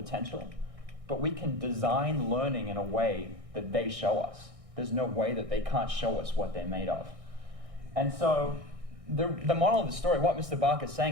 but we can design learning in a way that they show us. There's no way that they can't show us what they're made of. And so the moral of the story, what Mr. Barker is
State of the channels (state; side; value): late; left; 1.6 ms